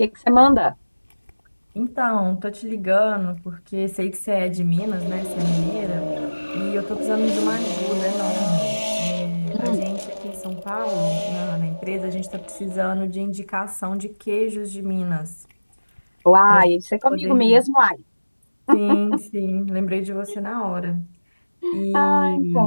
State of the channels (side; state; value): both; inverted; correlation -1.00